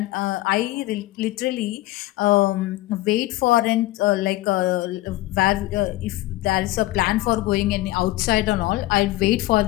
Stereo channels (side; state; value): right; quieter; 17.6 dB